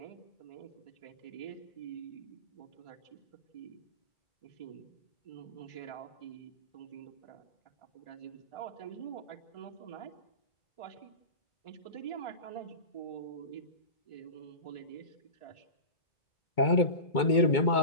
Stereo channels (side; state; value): right; late; 2.2 ms